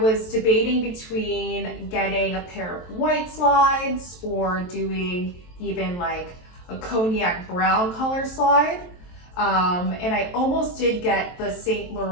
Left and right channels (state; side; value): late; right; 23 ms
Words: debating between getting a pair of white slides or doing even like a cognac brown color slide. And I almost did get the Saint